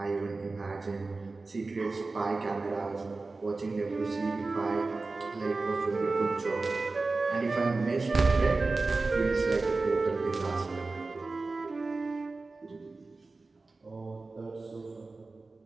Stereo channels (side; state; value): left; quieter; 3.6 dB